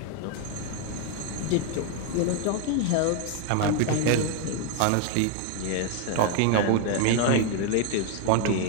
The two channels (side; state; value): both; different; correlation 0.01